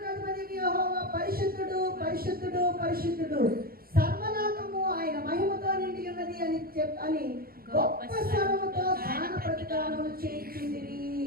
అధిపతి యెహోవా పరిశుద్ధుడు పరిశుద్ధుడు పరిశుద్ధుడు, సర్వలోకము ఆయన మహిమతో నిండి ఉన్నది అని గొప్ప స్వరముతో గాన ప్రతిగానములు చేయుచుండిరి.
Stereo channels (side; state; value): left; late; 0.43 ms